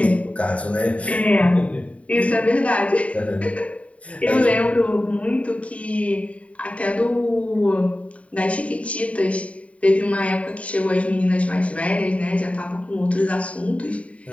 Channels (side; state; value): right; late; 0.066 ms